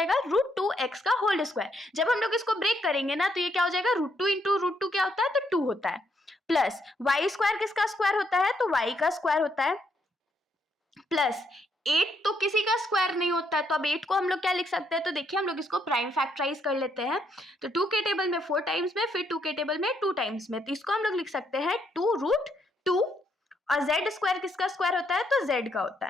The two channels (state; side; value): normal; both; correlation 0.74